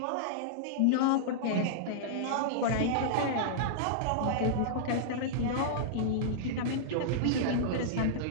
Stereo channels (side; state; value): both; different; correlation -0.02